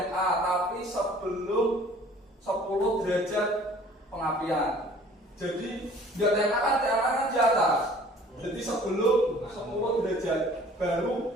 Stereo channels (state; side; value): normal; both; correlation 0.51